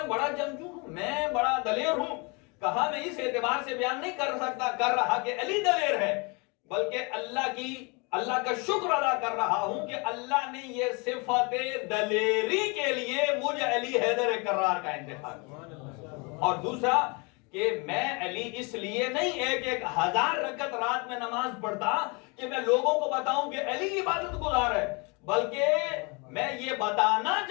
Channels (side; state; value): right; quieter; 30.3 dB